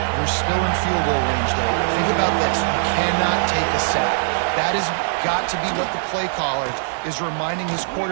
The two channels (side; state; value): left; silent; digital silence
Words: You're still in field goal range, though. Think about this. You cannot take a sack. That has got to be what the play caller is reminding his